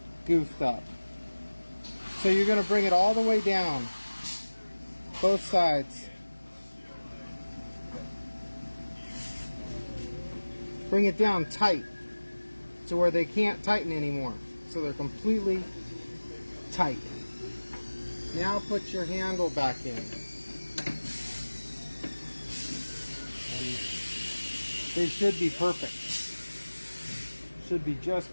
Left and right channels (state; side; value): inverted; both; correlation -1.00